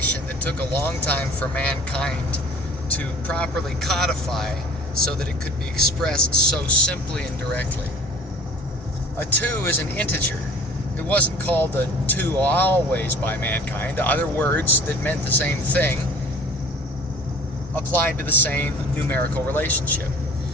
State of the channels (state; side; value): normal; both; correlation 0.47